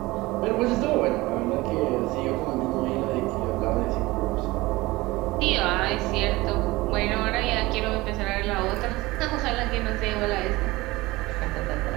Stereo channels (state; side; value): quieter; left; 20.5 dB